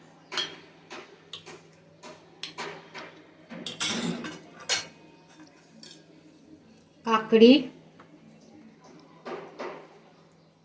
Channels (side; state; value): both; identical; correlation 1.00